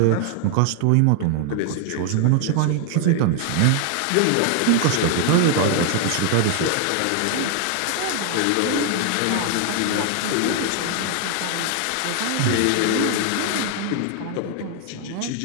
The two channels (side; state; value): both; different; correlation 0.00